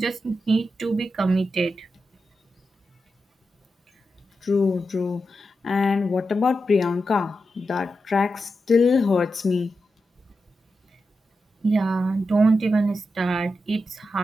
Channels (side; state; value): both; normal; correlation 0.89